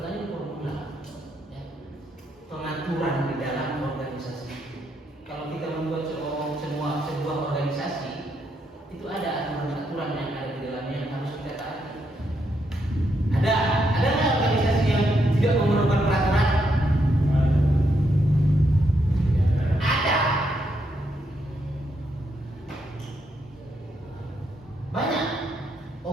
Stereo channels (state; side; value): normal; both; correlation 0.78